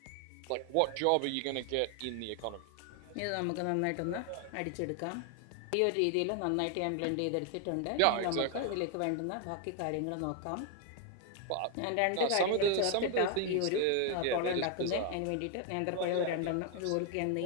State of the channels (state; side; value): different; both; correlation 0.00